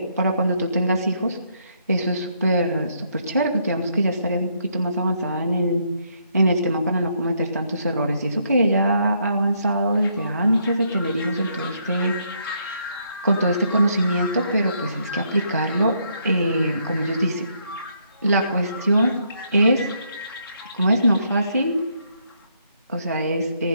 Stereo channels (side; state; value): both; inverted; correlation -0.73